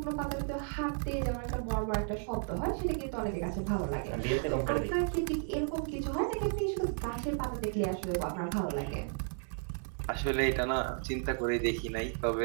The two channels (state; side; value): silent; left; 55 dB below the other